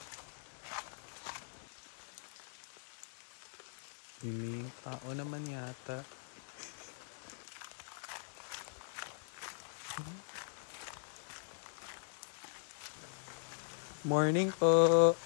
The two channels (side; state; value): right; silent; digital silence